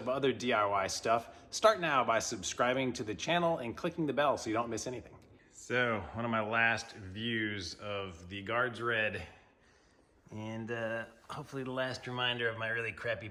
other DIY stuff, start now by subscribing to the channel and clicking the bell so you don't miss anything. So, one of my last views of the guards red, and hopefully the last reminder of my really crappy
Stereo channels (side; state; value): both; identical; correlation 1.00